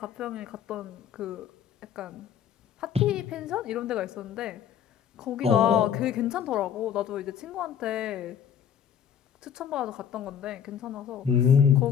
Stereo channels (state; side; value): quieter; right; 8.6 dB